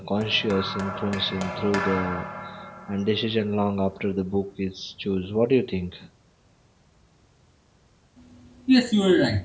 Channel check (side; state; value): both; identical; correlation 1.00